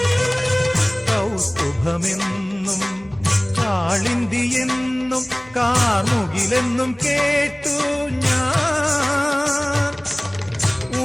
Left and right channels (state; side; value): noise; left; hum, 27 dB below the sound